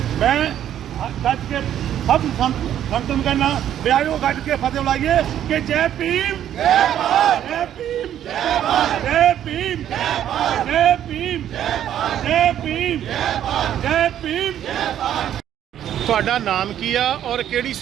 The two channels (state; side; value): quieter; left; 10.8 dB